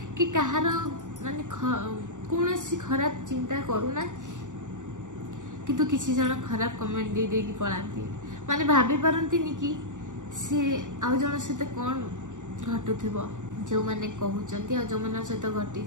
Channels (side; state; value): left; late; 0.86 ms